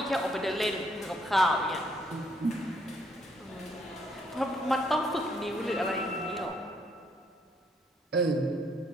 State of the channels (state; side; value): normal; both; correlation 0.70